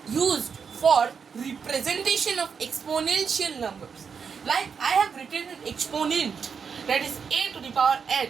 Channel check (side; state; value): left; quieter; 6.2 dB